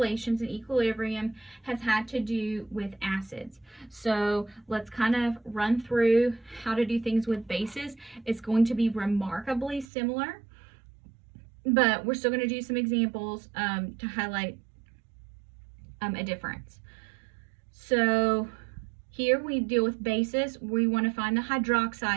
and equilibrium has had to do with acids. So let's kind of run through how to do things with bases. It's going to be remarkably similar, but we're still going to do some examples to highlight a difference. So here we deal with bases. We want to find the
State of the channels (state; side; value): drops out; left; at 9.9 s